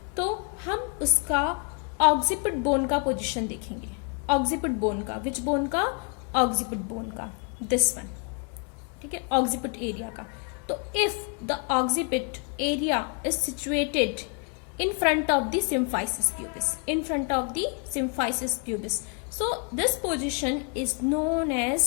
तो हम उसका ऑक्सीपिट बोन का पोजीशन देखेंगे. ऑक्सीपिट बोन का, विच बोन का? ऑक्सीपिट बोन का, दिस वन. ठीक है, ऑक्सीपिट एरिया का. तो if the occiput area is situated in front of the symphysis pubis, in front of the symphysis pubis, so this position is known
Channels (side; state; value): right; quieter; 36.7 dB